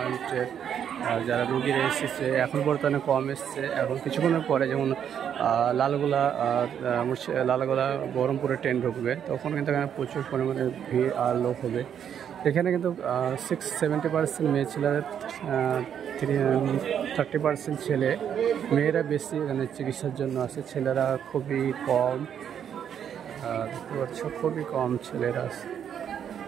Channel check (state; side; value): quieter; left; 8.7 dB